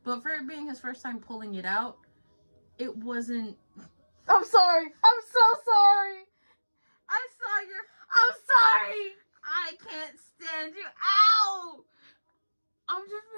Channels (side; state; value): both; inverted; correlation -1.00